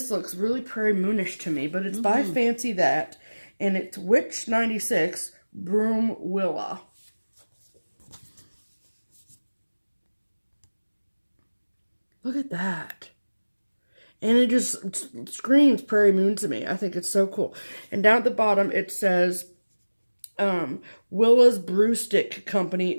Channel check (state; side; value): inverted; both; correlation -1.00